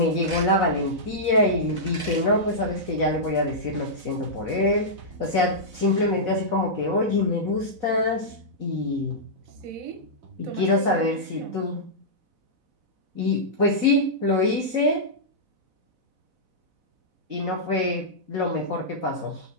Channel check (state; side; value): late; left; 4.0 ms